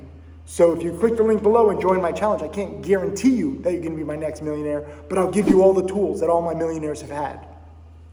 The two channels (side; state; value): both; identical; correlation 1.00